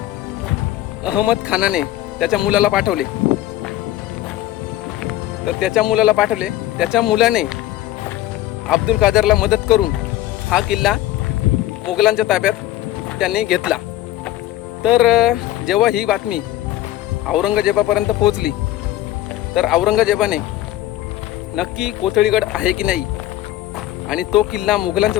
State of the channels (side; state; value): right; quieter; 14.6 dB